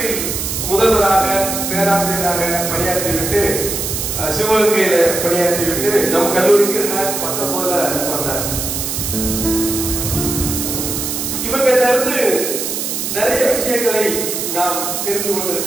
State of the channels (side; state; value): right; noise; hiss, 3 dB below the sound